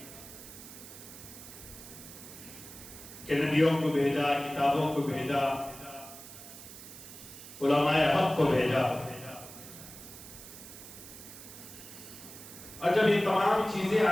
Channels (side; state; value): right; noise; hiss, 15 dB below the sound